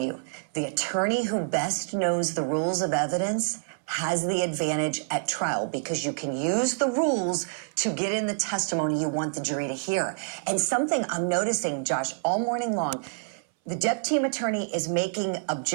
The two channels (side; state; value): left; silent; 60 dB below the other